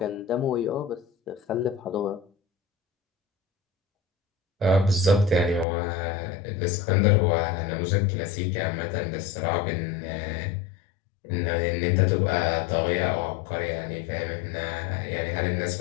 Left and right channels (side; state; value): right; drops out; at 5.7 s